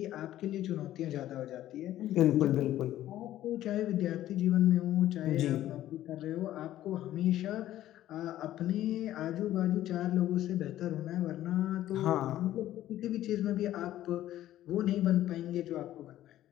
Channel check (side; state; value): right; quieter; 13.4 dB